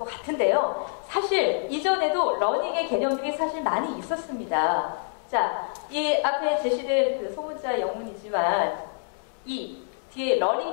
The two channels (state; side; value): silent; right; 61 dB below the other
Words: 같은데요. 사실 이전에도 러닝의 개념들이 사실 많이 있었습니다. 자, 이 앞에 제시된 그 소문자 영문이지만 이 뒤에